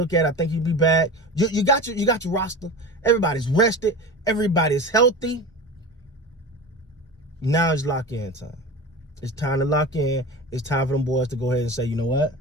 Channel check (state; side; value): normal; both; correlation 0.30